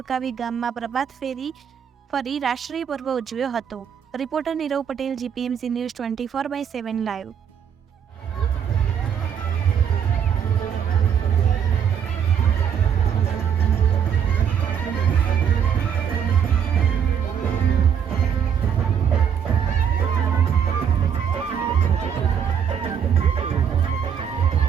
ગામમાં પ્રભાત ફેરી ફરી રાષ્ટ્રીય પર્વ ઉજવ્યો હતો। Reporter Nirav Patel, GPMC news 24/7 live.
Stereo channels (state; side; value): quieter; left; 8.0 dB